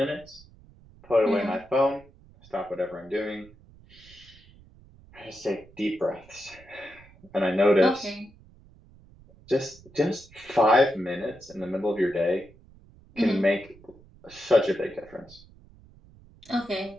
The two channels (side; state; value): right; noise; rumble, 24 dB below the sound